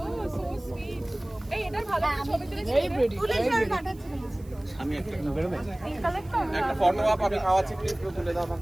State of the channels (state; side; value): noise; right; hiss, 27 dB below the sound